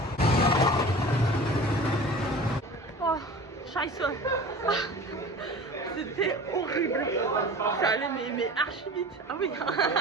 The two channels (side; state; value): both; normal; correlation 0.39